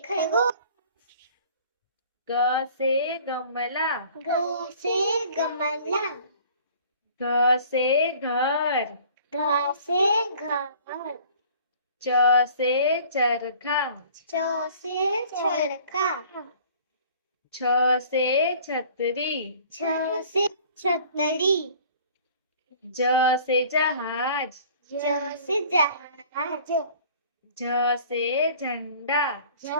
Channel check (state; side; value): inverted; both; correlation -0.50